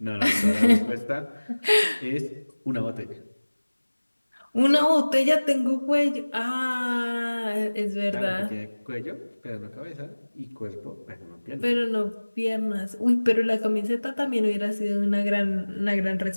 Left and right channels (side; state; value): both; inverted; correlation -1.00